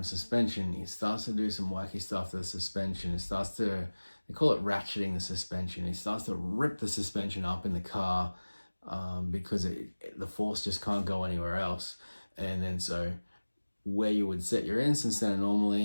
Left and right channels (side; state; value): both; inverted; correlation -1.00